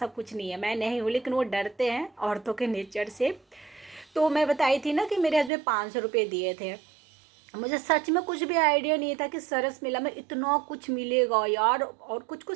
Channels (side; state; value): left; drops out; at 5.5 s